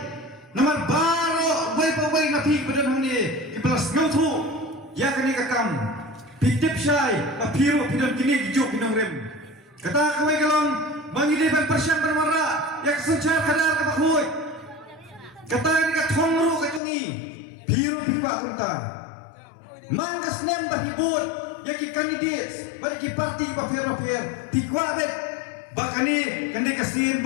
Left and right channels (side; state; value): right; drops out; at 16.8 s